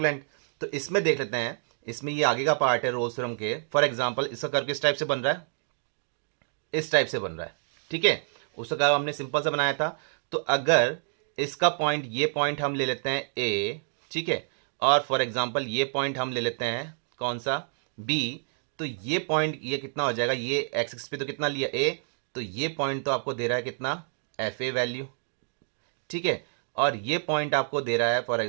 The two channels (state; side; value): silent; left; digital silence